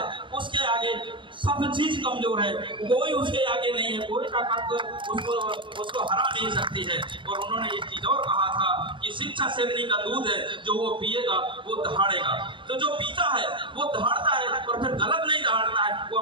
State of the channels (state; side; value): late; left; 0.24 ms